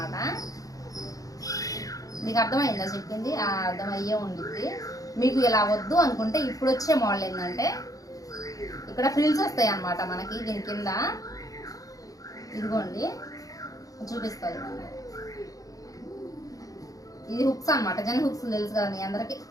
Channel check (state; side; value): late; right; 0.17 ms